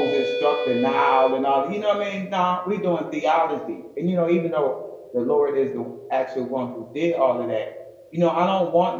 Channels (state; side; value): identical; both; correlation 1.00